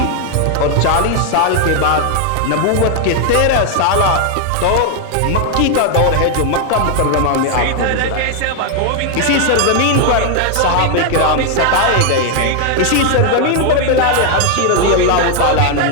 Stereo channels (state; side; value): different; both; correlation 0.00